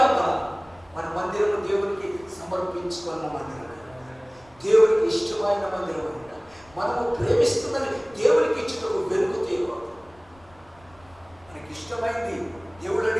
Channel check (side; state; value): left; noise; rumble, 27 dB below the sound